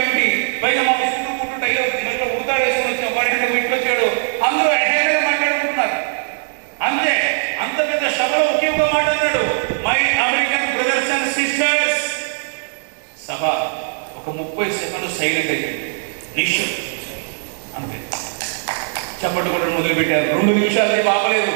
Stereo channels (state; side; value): silent; left; digital silence